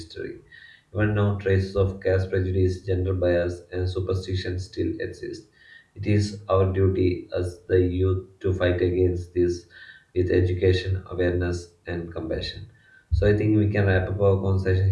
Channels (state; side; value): identical; both; correlation 1.00